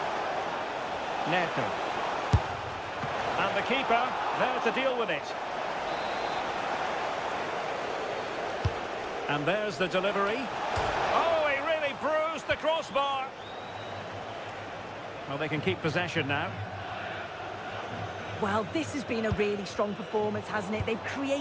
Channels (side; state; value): both; identical; correlation 1.00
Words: Neto. And the keeper there to deal with it. And there's the delivery. Oh, he really bruised the crossbar. Well, they can keep possession now. Well, this has been a really strong performance, hasn't it? They've